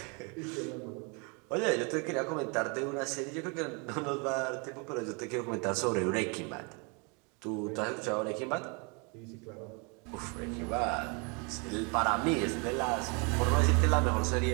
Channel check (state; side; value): quieter; left; 33.1 dB